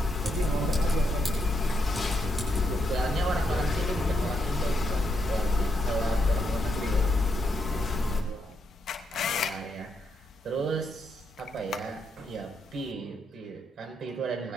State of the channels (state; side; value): normal; both; correlation 0.80